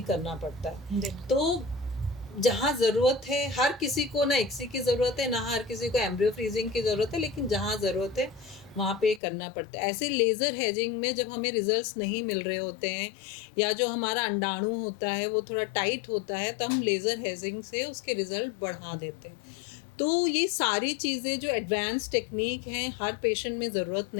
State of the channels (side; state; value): right; drops out; at 9.2 s